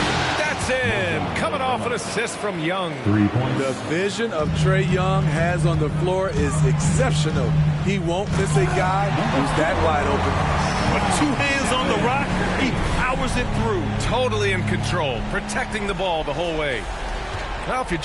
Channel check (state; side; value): identical; both; correlation 1.00